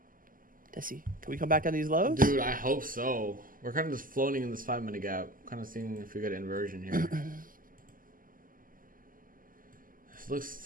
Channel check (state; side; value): late; left; 0.41 ms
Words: Desi, can we come back on these lows? Dude, I hope so. We're kind of just floating in this 5-minute gap. Kind of seeing if we get inversion here. This